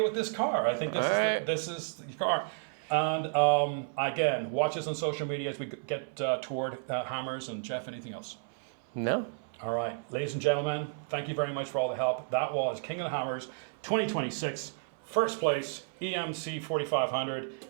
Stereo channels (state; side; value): silent; left; 56 dB below the other